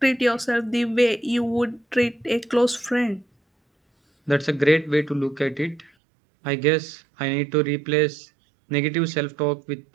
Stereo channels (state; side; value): drops out; left; at 5.9 s